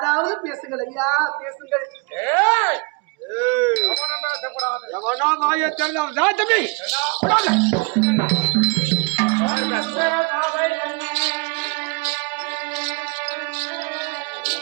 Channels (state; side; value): quieter; left; 31.2 dB